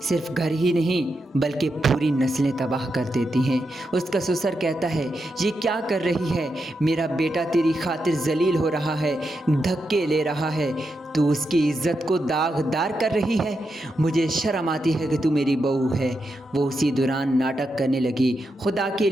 صرف گھر ہی نہیں بلکہ پوری نسلیں تباہ کر دیتی ہیں۔ اس کا سسر کہتا ہے، یہ کیا کر رہی ہے، میرا بیٹا تیری خاطر ذلیل ہو رہا ہے، دھکے لے رہا ہے، تو اس کی عزت کو داغدار کر رہی ہے، مجھے شرم آتی ہے کہ تو میری بہو ہے۔ وہ اسی دوران ناٹک کرنے لگی، خدا کے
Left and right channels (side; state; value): both; normal; correlation 0.86